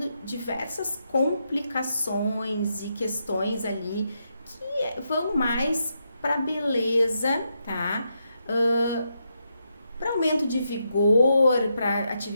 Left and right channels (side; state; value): both; inverted; correlation -0.82